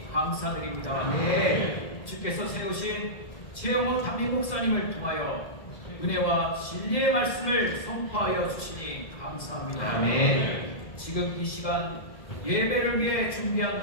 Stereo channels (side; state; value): right; late; 2.0 ms